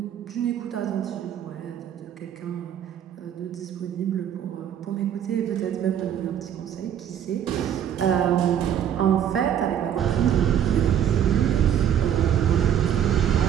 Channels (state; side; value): quieter; left; 9.5 dB